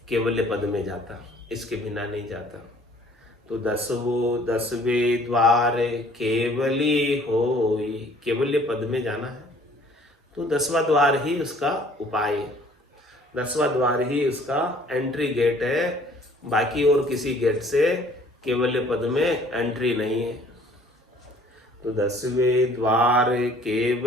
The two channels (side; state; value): both; normal; correlation 0.56